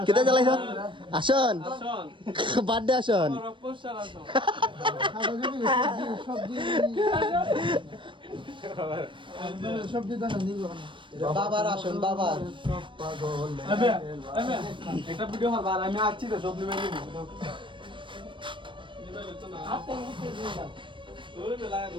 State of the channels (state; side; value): late; left; 0.24 ms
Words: কিতা জ্বালাইছ? আসন বার্থডে আসন। বাবার আসন বাবার একটা ভিডিও হারবার আমি আসছি তো সব নিয়ে নিব।